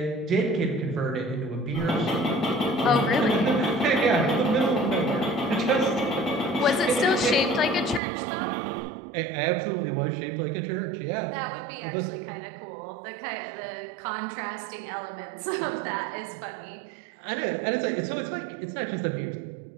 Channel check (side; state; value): left; drops out; at 8.0 s